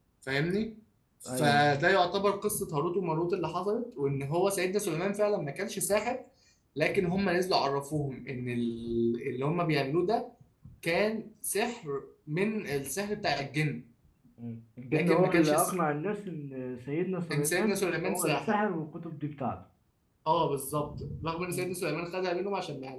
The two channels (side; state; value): both; identical; correlation 1.00